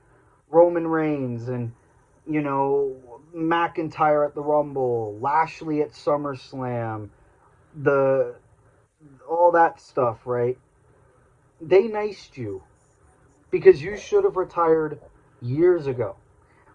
Roman Reigns, and, McIntyre at the Rumble, Lashley at SummerSlam, the all that stuff, right? They niced you because you should have retired years ago.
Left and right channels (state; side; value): identical; both; correlation 1.00